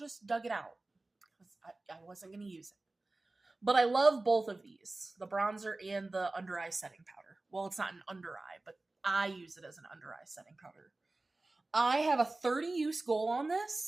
dug it out because I wasn't going to use it. But I love both of these, the bronzer and the under eye setting powder. Well, it's not an under eye, but I use it as an under eye setting powder. I have a 30 use goal on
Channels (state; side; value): quieter; left; 3.0 dB